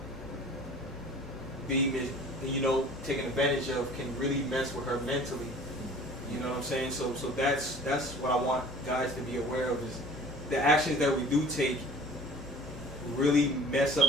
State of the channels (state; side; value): normal; both; correlation 0.47